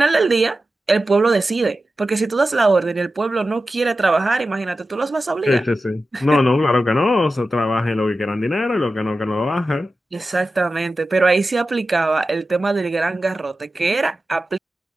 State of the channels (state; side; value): normal; both; correlation 0.93